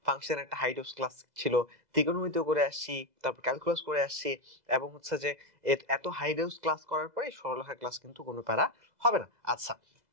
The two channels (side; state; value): left; late; 2.0 ms